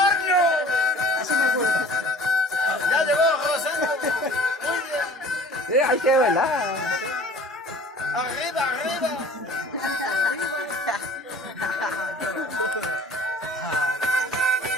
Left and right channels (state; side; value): normal; both; correlation 0.47